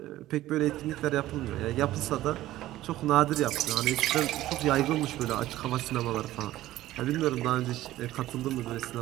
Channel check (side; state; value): left; quieter; 15.1 dB